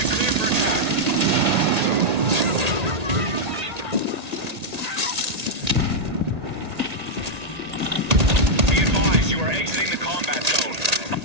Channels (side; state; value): left; late; 1.8 ms